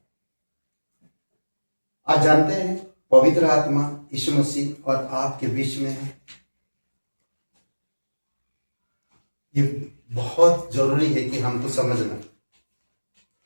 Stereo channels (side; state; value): both; inverted; correlation -1.00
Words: आज जानते हैं पवित्र आत्मा यीशु मसीह और आपके बीच में है। ये बहुत जरूरी है कि हमको समझना।